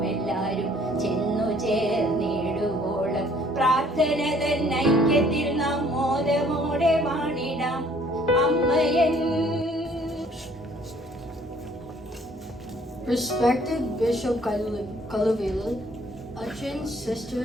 എല്ലാരും ചെന്നു ചേർന്നിടുവോളം പ്രാർത്ഥന തൻ ഐക്യത്തിൽ നാം മോദമോടെ വാണിടാം അമ്മയൻ. Respected Bishop Kaluvilu, Achins,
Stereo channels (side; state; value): both; normal; correlation 0.59